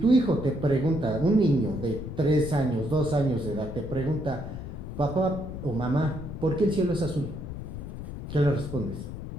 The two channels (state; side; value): noise; left; rumble, 9 dB below the sound